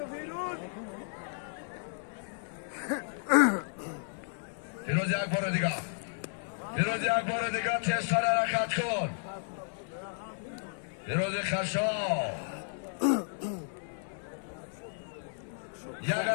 فیروز یک بار دیگه تیزتر حرکت کن فیروز خشاو یک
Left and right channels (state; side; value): silent; right; 56 dB below the other